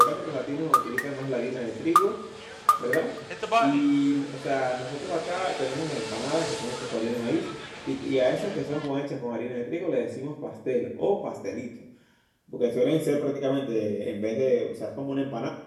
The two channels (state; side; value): identical; both; correlation 1.00